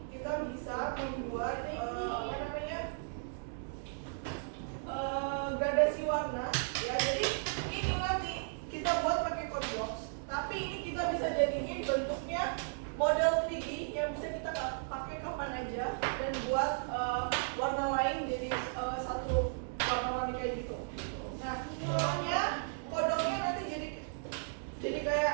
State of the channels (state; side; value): silent; left; digital silence